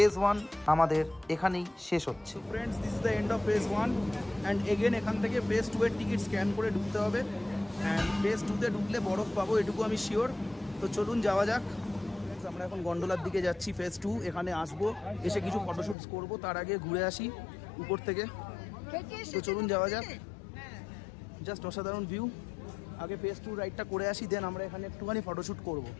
1 আমাদের এখানেই শেষ হচ্ছে। Friends, this is the end of phase 1 and again এখান থেকে ফেজ 2 এর টিকিট স্ক্যান করে ঢুকতে হবে। অ্যান্ড ফেজ 2তে ঢুকলে বরফ পাবো, এটুকু আমি শিওর। তো চলুন যাওয়া যাক। আমরা এখন গন্ডোলার দিকে যাচ্ছি, ফেজ 2। এখানে আসবো, এসে কিছু ফটোশ্যুটস করব, তার আগে ঘুরে আসি উপর থেকে। তো চলুন যাওয়া যাক। জাস্ট অসাধারণ ভিউ। আগে ফেজ 2 রাইডটা করে আসি, দেন আমরা এখানে একটুখানি ফটোশ্যুট করবো।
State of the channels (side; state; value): right; drops out; at 16.0 s